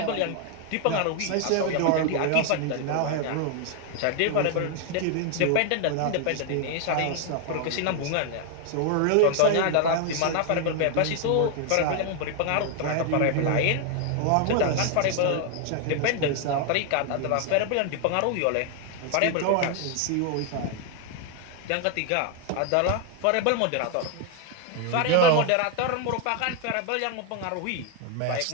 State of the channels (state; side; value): different; both; correlation 0.00